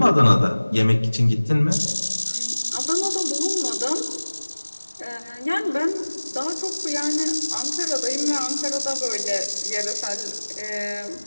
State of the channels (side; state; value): both; inverted; correlation -1.00